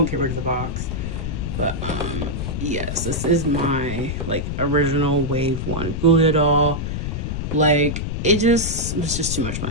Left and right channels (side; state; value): left; noise; rumble, 3 dB below the sound